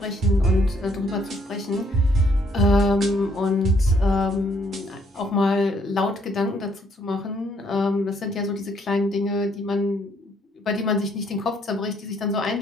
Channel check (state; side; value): normal; both; correlation 0.68